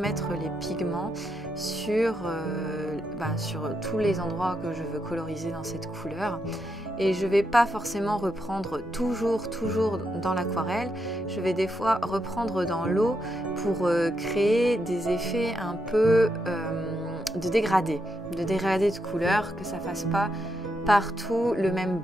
les pigments sur tous les endroits que je veux coloriser dans cette couleur. Et je ne vais pas forcément reprendre toujours dans l'aquarelle. Je vais des fois reprendre dans l'eau pour créer des effets un peu de dégradé de couleur, que ça ne fasse pas partout le même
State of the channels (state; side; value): normal; both; correlation 0.82